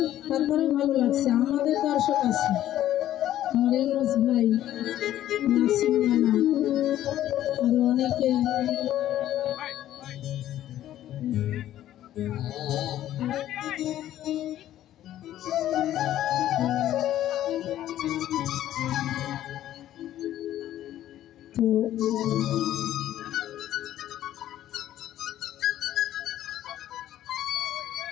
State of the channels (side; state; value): right; quieter; 12.7 dB